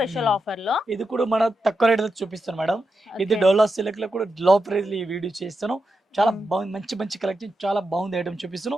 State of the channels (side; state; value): both; normal; correlation 0.87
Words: ఆఫర్ లో ఇది కూడా మన తక్కువ రేట్ చూపిస్తాను మేడం. ఇది ఓకే. డోలా సిల్క్ లో కూడా లో ప్రైస్ ఈ వీడియో చేస్తాను. చాలా బాగుంది, మంచి మంచి కలెక్షన్, చాలా బాగుంది ఐటమ్